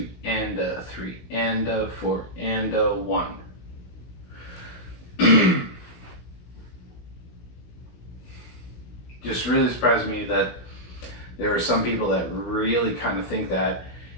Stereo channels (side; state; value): right; late; 16 ms